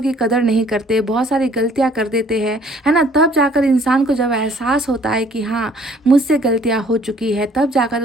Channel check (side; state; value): both; normal; correlation 0.58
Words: की कदर नहीं करते, बहुत सारी गलतियां कर देते हैं, है ना, तब जाकर इंसान को जब एहसास होता है कि हाँ मुझसे गलतियां हो चुकी है, तब जाकर